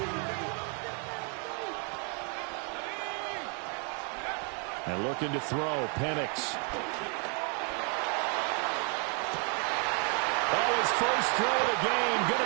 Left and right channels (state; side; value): quieter; left; 37.9 dB